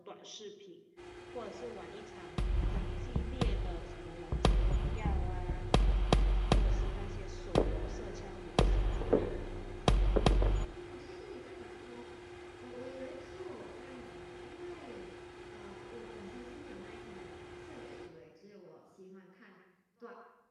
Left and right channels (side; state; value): both; identical; correlation 1.00